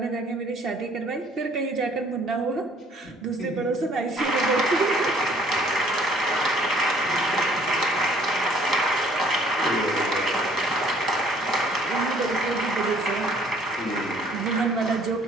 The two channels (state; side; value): normal; both; correlation 0.59